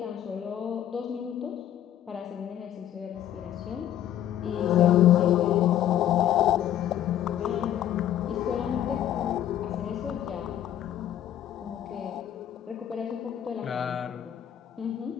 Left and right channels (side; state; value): right; quieter; 11.2 dB